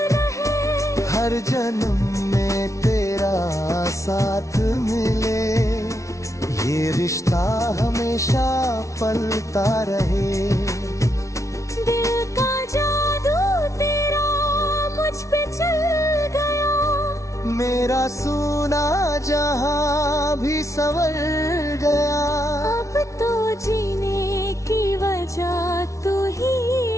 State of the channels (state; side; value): late; right; 0.15 ms